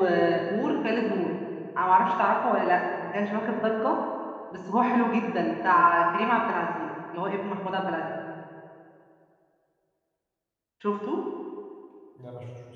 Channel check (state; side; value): identical; both; correlation 1.00